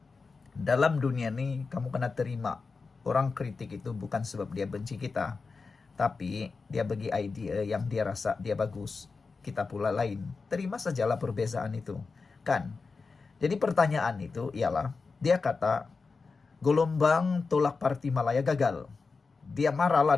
Dalam dunia ini kamu kena terima. Orang kritik itu bukan sebab dia benci kita, tapi dia bagi idea yang dia rasa dia bagus. Kita pula lain. Terima sajalah perbezaan itu. Kan? Jadi pertanyaan itu ialah, dia kata, gelombang tolak Parti Malaya gagal. Dia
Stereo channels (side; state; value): right; quieter; 4.4 dB